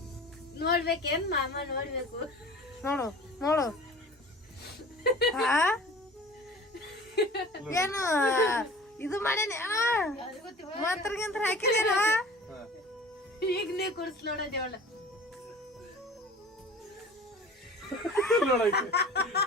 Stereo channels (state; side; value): normal; both; correlation 0.42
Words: ನೋಡ್ಬೇಕೇನ್ ಮಾಮ? ನೋಡ್ಬೇಕು. ನೋಡು ಏನು ಇದು ಮಾಡೇನ ಮಂತ್ರಗಿಂತ ಹಾಕಿದೇನ? ಈಗ ನೀ ಕುಡ್ಸ್ ನೋಡೋದೇವಳ.